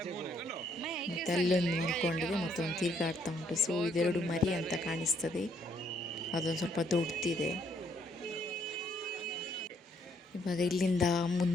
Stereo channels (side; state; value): both; normal; correlation 0.69